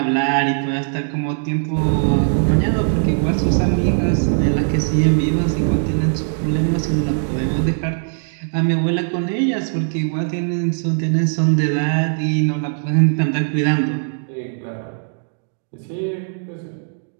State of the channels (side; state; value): left; silent; digital silence